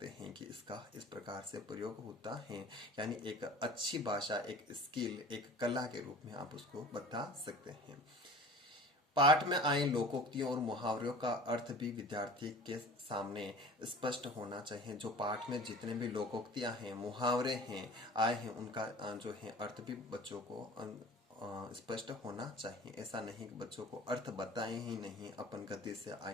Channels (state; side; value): normal; both; correlation 0.42